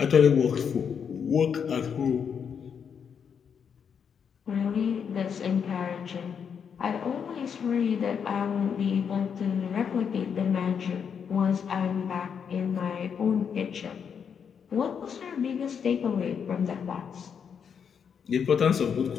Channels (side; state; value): right; quieter; 7.2 dB